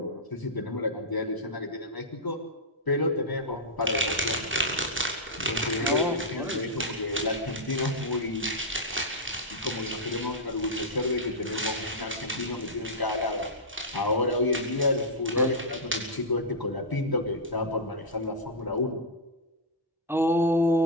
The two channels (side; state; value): both; normal; correlation -0.07